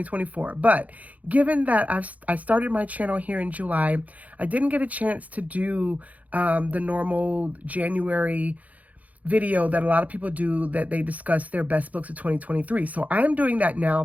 but given that I started my channel here in July, I didn't get a chance to do the normal January video that a lot of people do, that they discuss their best books of 2023. So I'm doing that now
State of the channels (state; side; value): late; left; 0.073 ms